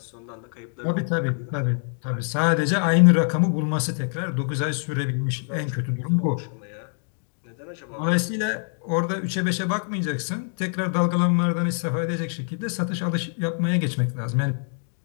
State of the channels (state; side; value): silent; right; 56 dB below the other